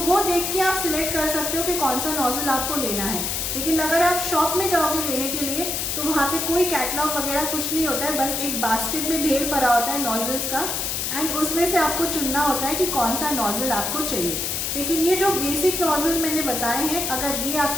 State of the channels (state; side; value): noise; left; hiss, 1 dB below the sound